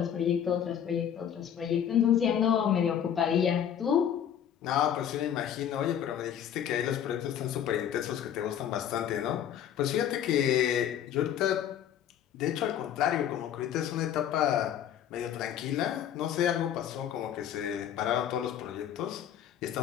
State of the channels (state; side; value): quieter; right; 9.6 dB